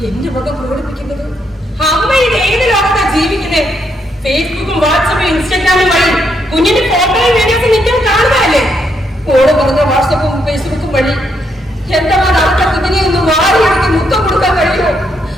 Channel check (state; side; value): normal; both; correlation 0.76